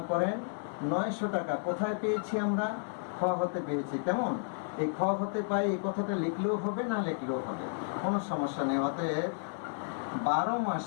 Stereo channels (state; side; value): silent; right; digital silence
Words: করেন 900 টাকা। কোথায় পেয়েছি আমরা? খ হতে পেয়েছি। কেমন? এই খ হতে পাই, এই কথাটা লিখলেও হবে না লিখলেও হবে, কোনো সমস্যা নেই। অতএব 12